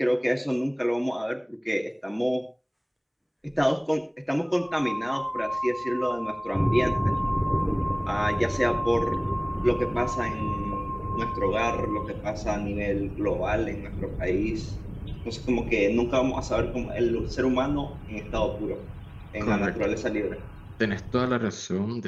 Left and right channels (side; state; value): both; identical; correlation 1.00